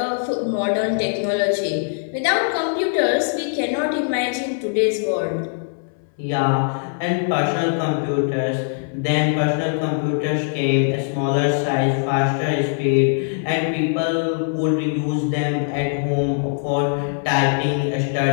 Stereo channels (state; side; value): silent; right; 65 dB below the other